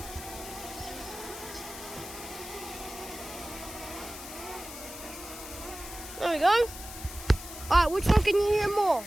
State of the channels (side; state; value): left; noise; hiss, 12 dB below the sound